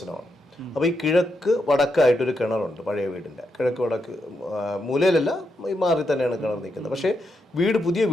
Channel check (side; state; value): both; normal; correlation 0.83